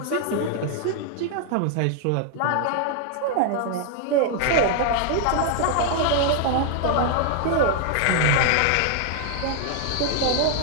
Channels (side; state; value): both; different; correlation 0.00